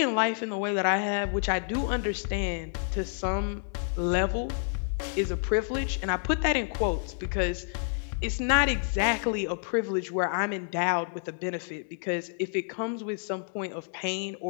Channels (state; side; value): silent; right; 57 dB below the other